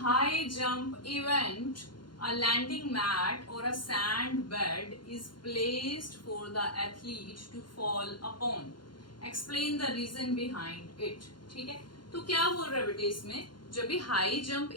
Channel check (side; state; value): right; late; 0.71 ms